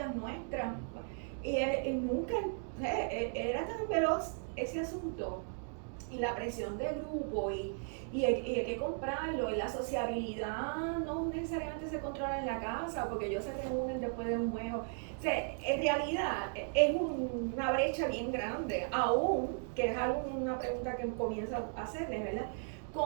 nuestras, y él nunca, era tan veloz ese asunto, y la presión del grupo, y hay que comprarlo, y la sociabilidad no necesariamente se controla en la casa, porque ellos se reúnen después de un juego. O sea, en realidad es una brecha bien grande, aún, que es una pregunta que comienzo a hacerles, ¿verdad?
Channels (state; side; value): silent; left; 54 dB below the other